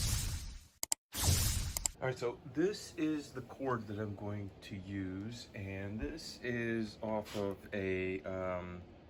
All right, so this is the cord that I'm going to use, and this is off of a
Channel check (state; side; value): identical; both; correlation 1.00